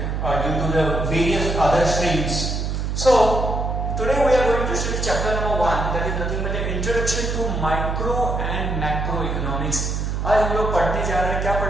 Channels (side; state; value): right; noise; hum, 2 dB below the sound